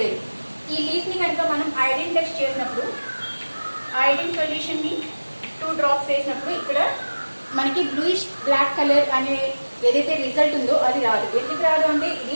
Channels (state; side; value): inverted; both; correlation -1.00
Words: ఈ లీఫ్ని కనుక మనం ఐరన్ టెస్ట్ చేసినప్పుడు ఐరన్ సొల్యూషన్ని 2 drops వేసినప్పుడు ఇక్కడ మనకి బ్లూయిష్ బ్లాక్ కలర్ అనే ఏదైతే రిజల్ట్ ఉందో అది రాదు. ఎందుకు రాదు అంటే